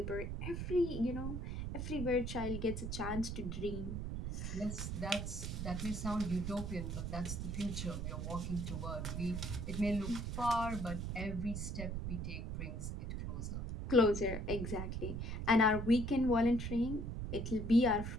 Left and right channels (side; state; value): right; noise; rumble, 4 dB below the sound